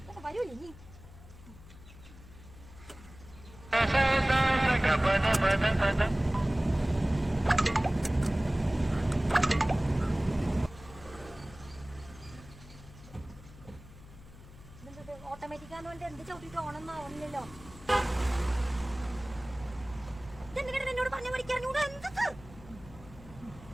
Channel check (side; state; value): left; noise; hum, 19 dB below the sound